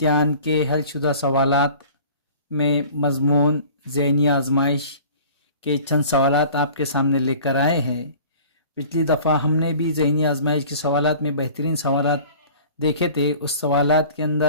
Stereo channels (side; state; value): both; inverted; correlation -0.45